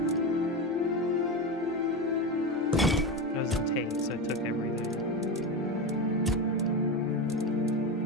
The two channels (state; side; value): normal; both; correlation 0.19